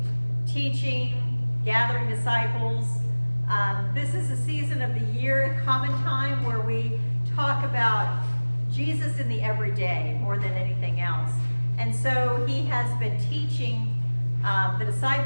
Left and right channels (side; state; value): both; inverted; correlation -1.00